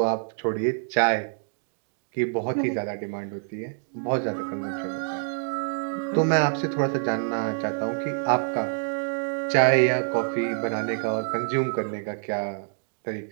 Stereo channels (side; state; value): left; silent; digital silence